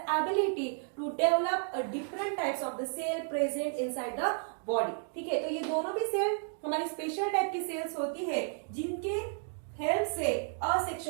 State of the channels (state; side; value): silent; left; 56 dB below the other